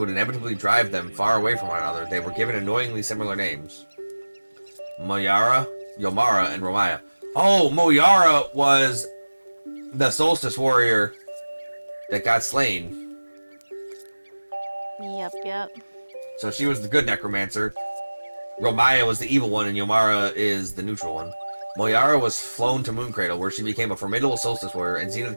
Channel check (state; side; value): inverted; both; correlation -1.00